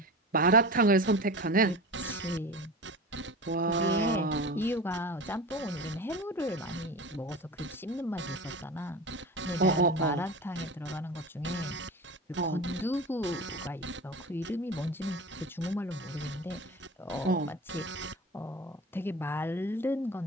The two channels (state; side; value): normal; both; correlation 0.31